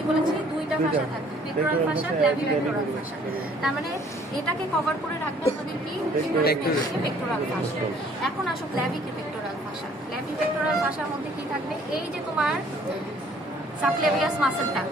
বলেছি? দুইটা ফাসা থাকে, পেক্টোরাল ফাসা, ক্ল্যাভিপেক্টোরাল ফাসা। তার মানে এটাকে কভার করে রাখবে আমাদের কি? পেক্টোরাল ফাসা। এখন আসো ক্ল্যাভিপেক্টোরাল ফাসা। ক্ল্যাভিপেক্টোরাল ফাসার মধ্যে কি থাকবে? এই যে তোমার সাবক্লাভিয়াস মাসলটা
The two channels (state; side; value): normal; both; correlation 0.58